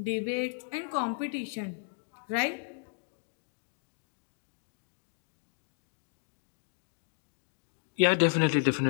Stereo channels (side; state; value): right; silent; 55 dB below the other